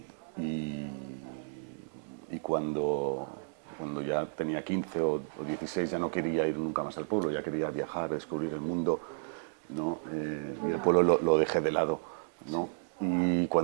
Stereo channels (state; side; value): silent; left; 56 dB below the other